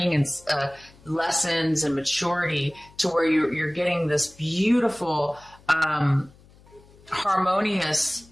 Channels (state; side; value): noise; left; hum, 26 dB below the sound